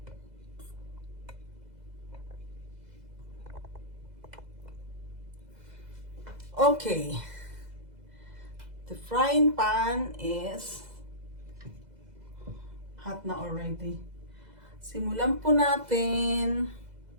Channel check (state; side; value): late; left; 2.0 ms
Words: Okay. The frying pan is hot na already. Simulan po natin.